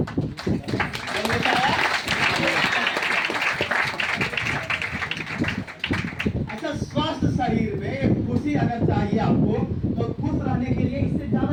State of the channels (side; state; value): both; identical; correlation 1.00